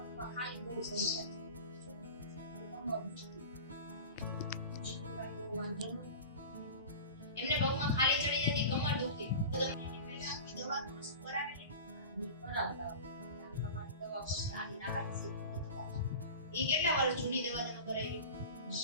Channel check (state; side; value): inverted; both; correlation -0.33